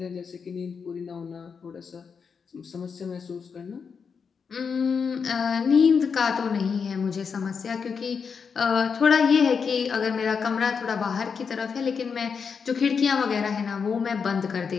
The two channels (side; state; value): right; quieter; 6.0 dB